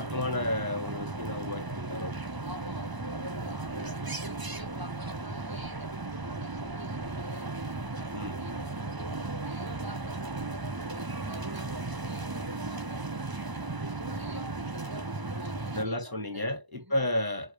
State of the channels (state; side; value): late; left; 1.0 ms